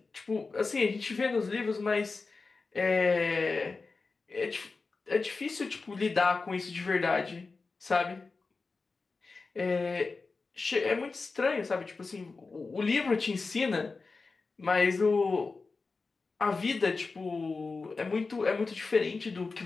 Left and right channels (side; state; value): right; quieter; 4.1 dB